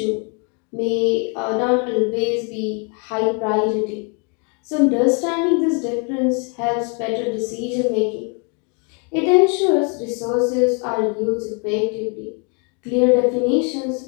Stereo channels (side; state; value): right; quieter; 36.3 dB